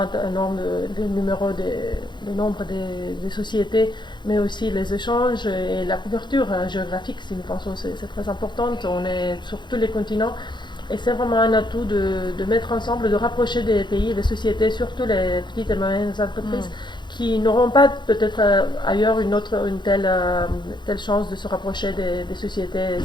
nombre de nombre des sociétés, mais aussi les échanges et la couverture géographique, si nous pensons que c'est très important. On est sur tous les continents. Et c'est vraiment un atout de mettre ensemble, de rapprocher des pays et des sociétés, surtout les petites et moyennes entreprises, qui n'auront pas peut-être ailleurs une telle chance de se rapprocher des sociétés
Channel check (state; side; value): late; right; 0.22 ms